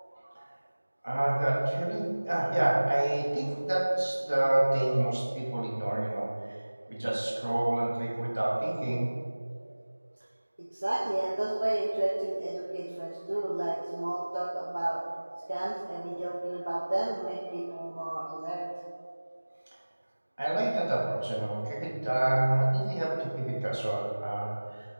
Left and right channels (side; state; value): both; inverted; correlation -1.00